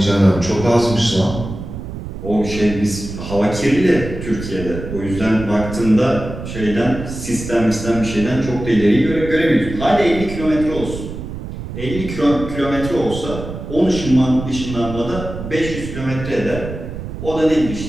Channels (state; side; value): noise; right; rumble, 9 dB below the sound